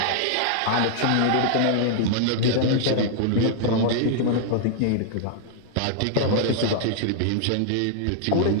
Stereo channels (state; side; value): different; both; correlation -0.01